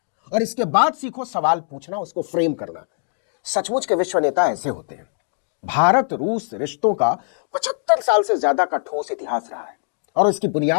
और इसके बाद सीखो सवाल पूछना, उसको फ्रेम करना। सचमुच के विश्व नेता ऐसे होते हैं। भारत रूस रिश्तों का 75 साल से ज्यादा का ठोस इतिहास रहा है और इसकी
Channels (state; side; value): silent; right; digital silence